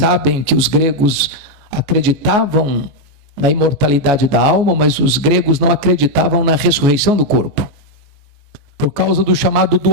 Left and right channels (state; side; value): late; left; 14 ms